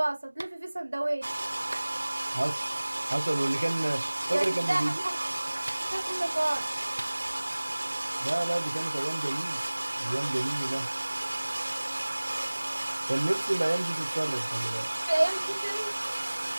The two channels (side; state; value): both; inverted; correlation -1.00